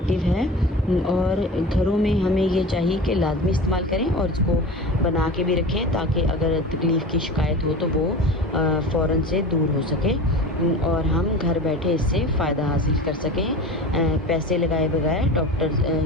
है, और घरों में हमें ये चाहिए कि लाजमी इस्तेमाल करें और इसको बना के भी रखें, ताकि अगर तकलीफ़ की शिकायत हो तो वो फ़ौरन से दूर हो सके और हम घर बैठे इससे फ़ायदा हासिल कर सकें, पैसे लगाए बगैर,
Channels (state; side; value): normal; both; correlation 0.34